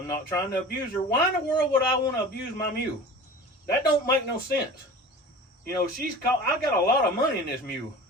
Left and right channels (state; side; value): normal; both; correlation 0.38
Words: not trying to abuse her. Why in the world would I want to abuse my mule? That don't make no sense. You know, I got a lot of money in this mule.